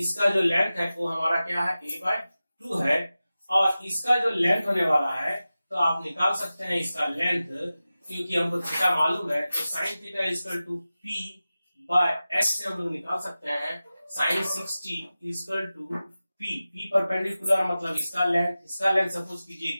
जो लेंथ है वो हमारा क्या है, a/2 है। और इसका जो लेंथ होने वाला है तो आप निकाल सकते हैं इसका लेंथ, क्योंकि हमको थीटा मालूम है। तो sine theta equal to p/h से हम लोग निकाल सकते हैं sine 60 equal to p perpendicular, मतलब इसका लेंथ सपोज कीजिए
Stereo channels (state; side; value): inverted; both; correlation -0.95